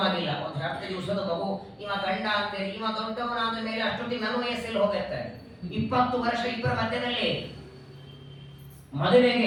ಆಗಿಲ್ಲ, 10 ದಿವಸದ ಮಗು, ಇವ ಗಂಡ ಅಂತೇಳಿ, ಇವ ದೊಡ್ಡವನಾದ ಮೇಲೆ ಅಷ್ಟೊತ್ತಿಗೆ ನನ್ನ ವಯಸ್ಸಲ್ಲಿ ಹೋಗಿರ್ತಾರೆ. 20 ವರ್ಷ ಇಬ್ಬರ ಮಧ್ಯದಲ್ಲಿ.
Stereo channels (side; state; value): both; identical; correlation 1.00